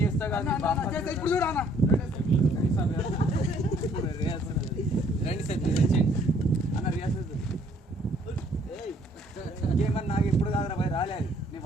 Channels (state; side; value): normal; both; correlation 0.63